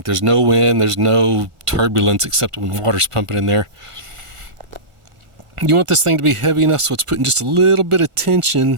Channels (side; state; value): left; late; 1.4 ms